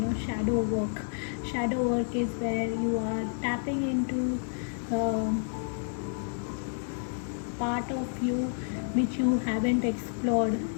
shadow work. Shadow work is where you are tapping into part of you which you haven't explored.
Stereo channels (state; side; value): silent; right; 55 dB below the other